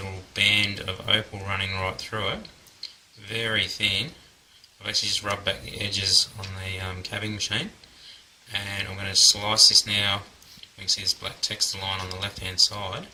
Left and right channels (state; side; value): identical; both; correlation 1.00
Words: band of opal running right through it. Very thin. I've actually just rubbed back the edges on the cabbing machine. And I'm going to slice this now. You can see this black texture line on the left hand side.